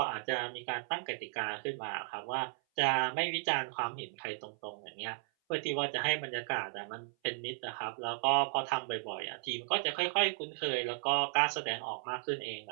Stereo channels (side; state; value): left; silent; 54 dB below the other